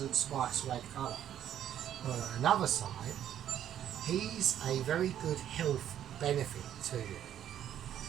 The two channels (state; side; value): quieter; left; 10.6 dB